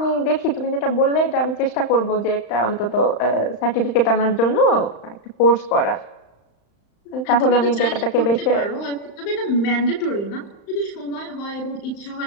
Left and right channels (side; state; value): right; late; 35 ms